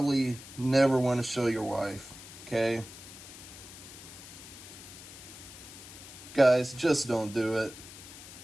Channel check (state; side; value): noise; left; hiss, 15 dB below the sound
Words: never want to show your wife, okay? Guys, just don't do it.